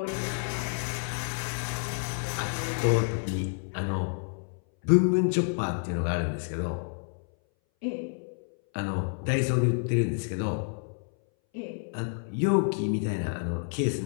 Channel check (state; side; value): silent; right; 58 dB below the other